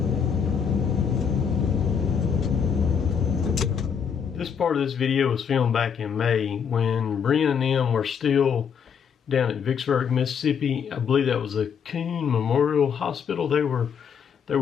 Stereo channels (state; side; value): quieter; right; 7.1 dB